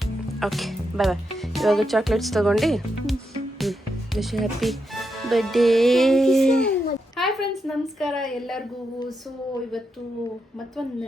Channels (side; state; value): both; normal; correlation 0.84